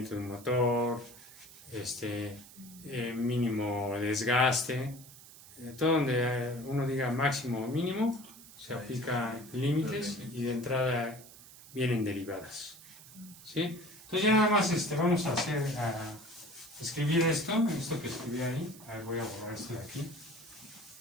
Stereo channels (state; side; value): noise; right; hiss, 19 dB below the sound